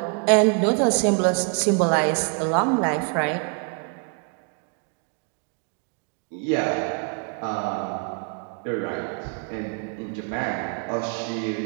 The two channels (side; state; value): left; quieter; 37.3 dB